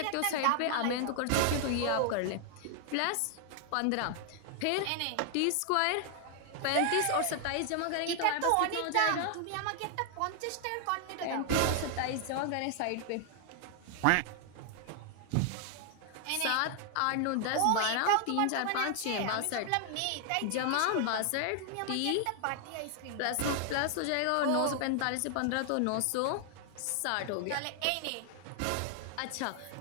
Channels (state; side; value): different; both; correlation 0.00